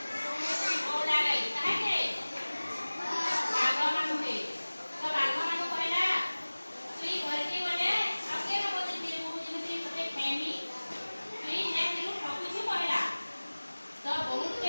बोला गई काहे बाघ मानु के तो बाघ मानु कहला तुई घर के गले आके न बोते तेरे मुंह जेमती तते फैमी तुई ने दिलु ठकुछु कहला तो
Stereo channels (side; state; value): both; inverted; correlation -1.00